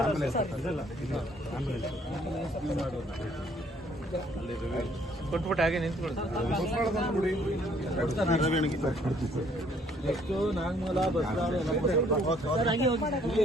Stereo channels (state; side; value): normal; both; correlation 0.63